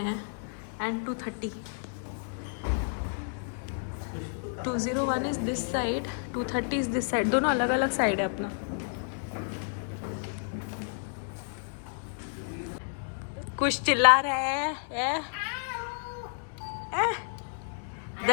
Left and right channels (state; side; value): silent; right; 57 dB below the other